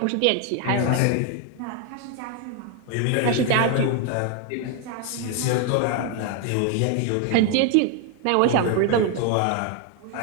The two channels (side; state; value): both; different; correlation 0.01